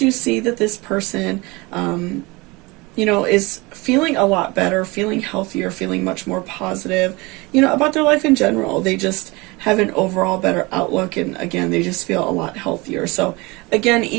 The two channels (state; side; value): quieter; left; 24.3 dB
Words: see that this person, is feeling a lot better, feeling healthier, feeling much more positive, about their life in general. They just have an overall better outlook, and again, they just feel a lot healthier. So again,